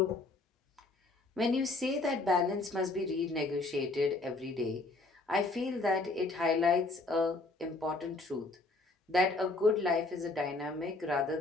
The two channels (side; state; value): right; quieter; 3.2 dB